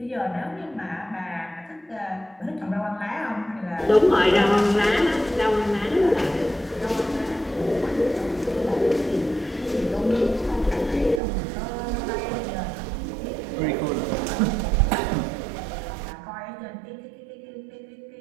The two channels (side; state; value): left; drops out; at 11.2 s